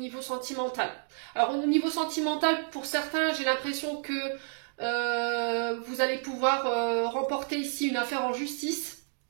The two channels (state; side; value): silent; left; 58 dB below the other